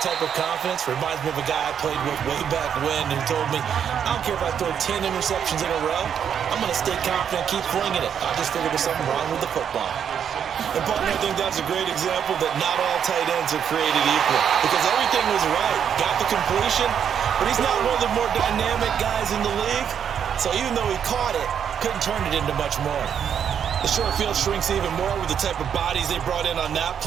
type of confidence reminds me of a guy I played with way back when who told me, I don't care if I throw 10 interceptions in a row. I'm going to stay confident and keep flinging it. I just figured there's something wrong with the football. And, partner, I think that's a great example that not all tight ends are created equal because everything was right. Got the completion, but he's not one of the more dynamic guys in the league. So even though he caught it, couldn't turn it into much more. The short field shrinks even more with the type of bodies they brought in on that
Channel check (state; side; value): quieter; left; 8.2 dB